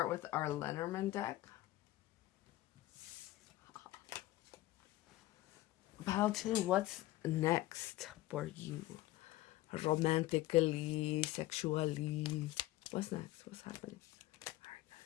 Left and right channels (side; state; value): right; quieter; 16.9 dB